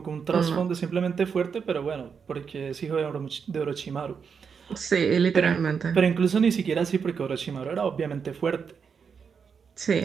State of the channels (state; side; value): quieter; left; 6.3 dB